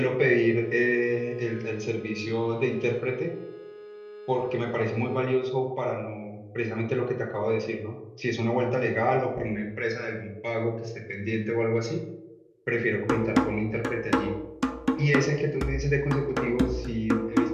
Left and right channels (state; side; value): identical; both; correlation 1.00